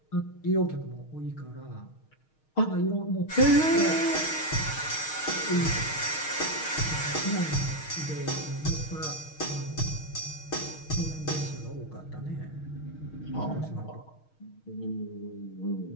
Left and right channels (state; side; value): late; right; 6.4 ms